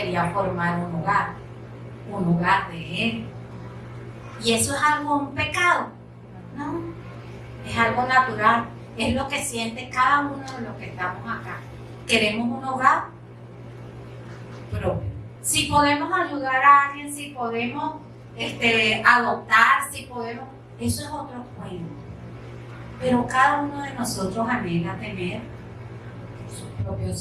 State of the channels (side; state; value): both; identical; correlation 1.00